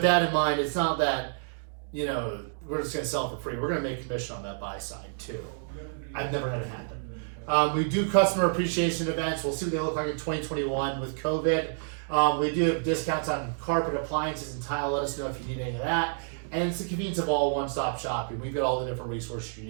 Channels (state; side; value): silent; left; digital silence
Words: that in mind, it's not that, you know, we're just going to sell it for free. We're going to make commission on that buy side too. I've never had it happen. We do customer appreciation events. We'll see what they look like in 2021 with COVID. We do have discounts on carpet, appliances, and tile. Let us know if you need any of that. And it's the convenience of all one-stop shopping. We've got all the different resources you